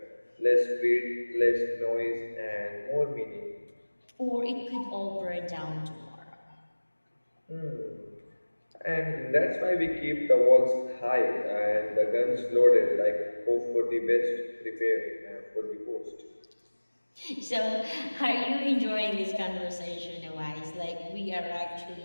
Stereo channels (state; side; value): inverted; both; correlation -1.00